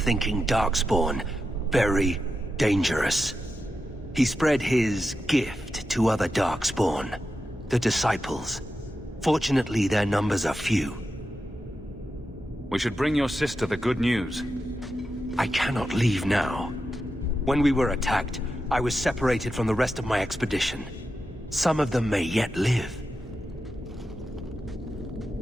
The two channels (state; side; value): normal; both; correlation 0.89